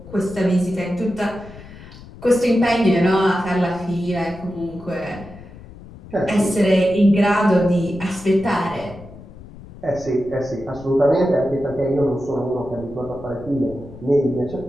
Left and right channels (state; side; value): noise; left; rumble, 17 dB below the sound